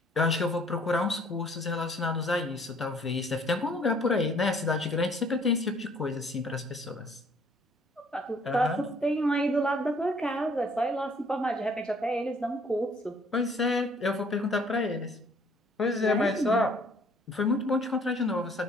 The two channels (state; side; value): normal; both; correlation 0.60